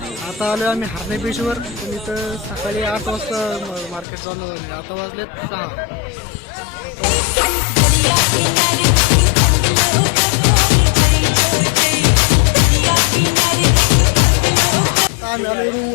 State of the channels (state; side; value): drops out; right; at 4.0 s